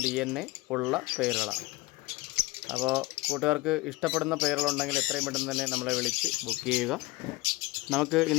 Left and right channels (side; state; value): right; quieter; 21.6 dB